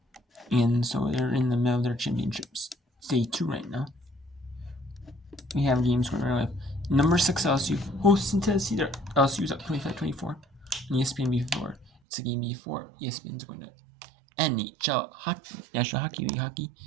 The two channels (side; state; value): left; drops out; at 11.9 s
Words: And so they're in the middle of their championships. Day 2 right now. We have games going on. Number 6 LSU hosting Tennessee. LSU's up 25-24. And ESPN before. It's a game before ESPN's going to NHL hockey, National Hockey League hockey.